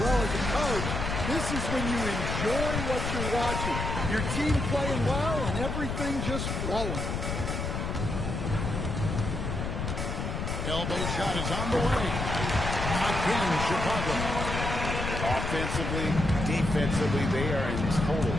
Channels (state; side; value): noise; left; rumble, 3 dB below the sound